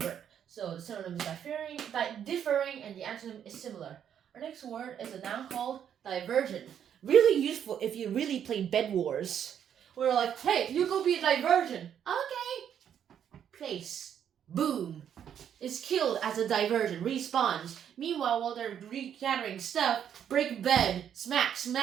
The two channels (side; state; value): left; quieter; 9.1 dB